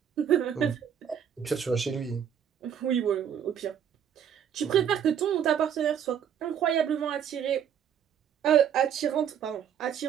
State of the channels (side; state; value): left; quieter; 8.7 dB